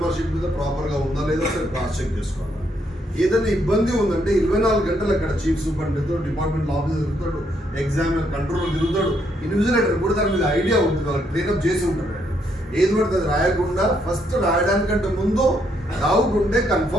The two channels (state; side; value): normal; both; correlation 0.74